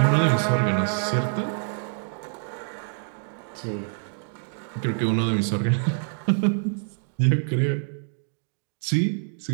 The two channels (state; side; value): silent; left; digital silence